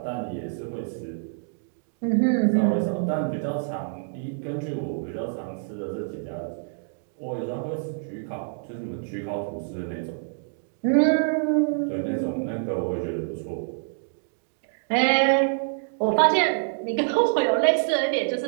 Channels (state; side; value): silent; left; digital silence